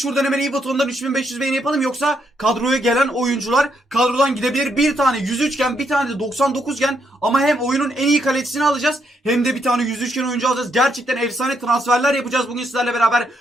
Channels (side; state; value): both; normal; correlation 0.76